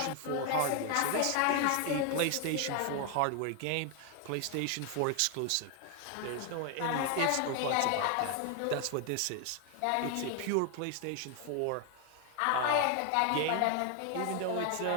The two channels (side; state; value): both; different; correlation 0.00